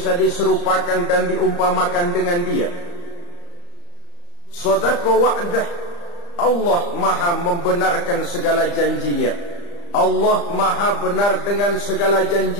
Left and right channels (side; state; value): right; late; 35 ms